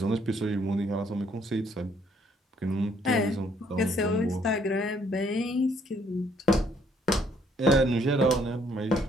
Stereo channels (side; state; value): both; normal; correlation 0.66